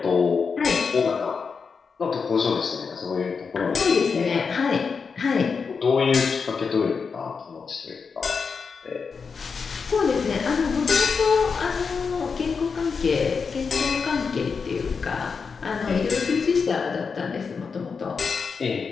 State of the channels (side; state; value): right; quieter; 5.4 dB